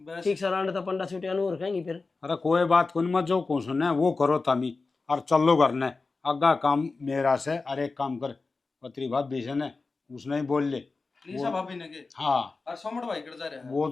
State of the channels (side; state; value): right; quieter; 3.9 dB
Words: बस ठीक से रांड तो पंडा छुटे अनूर कहेंगी फिर अरे कोई बात को नहीं मत जो को सुने वो करो तामी और चलो करने अग्गा काम मेरा से अरे एक काम कर पत्री भाभी से ने उसने ही बोल ले लीसा भाभी ने के हाँ और सोमड़ भाई कर जा रहा है वो